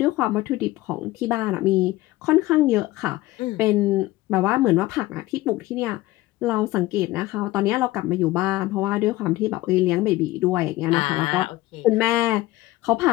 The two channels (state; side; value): quieter; right; 17.8 dB